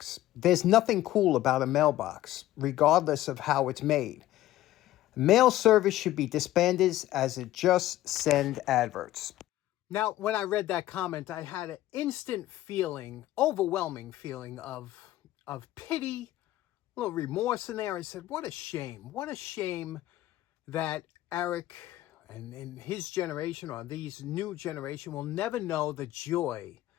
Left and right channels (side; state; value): right; quieter; 14.8 dB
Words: There's nothing cool about a mailbox, regardless of how it's made. Mail service should be disbanded as it just send adverts. Now, when I read that comment, I had an instant feeling, overwhelming feeling of pity, a little remorse in there. I said, what a shame. What a shame that Eric and in his generation, or these new generation, will never know the joy